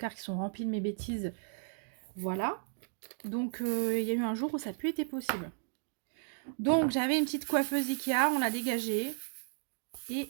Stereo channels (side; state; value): left; silent; digital silence